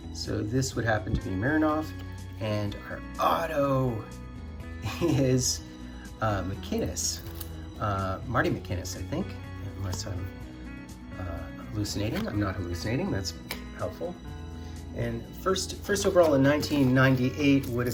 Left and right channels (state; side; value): identical; both; correlation 1.00